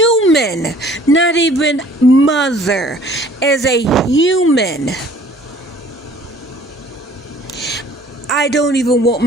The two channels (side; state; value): both; normal; correlation 0.54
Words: not even mother, as a human, I don't even want